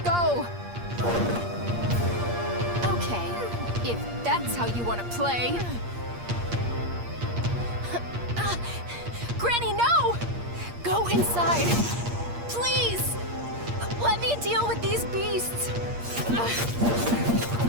go! Okay, if that's how you want to play. Granny, no! Go inside! Please! Let me deal with these beasts!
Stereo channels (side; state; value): left; late; 8.5 ms